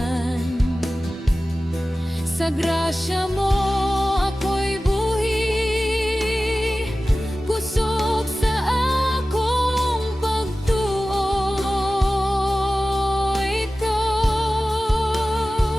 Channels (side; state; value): both; normal; correlation 0.96